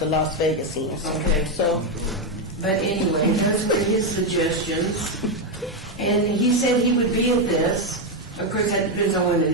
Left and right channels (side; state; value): both; normal; correlation 0.05